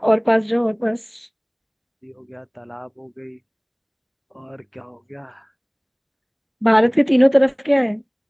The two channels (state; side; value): identical; both; correlation 1.00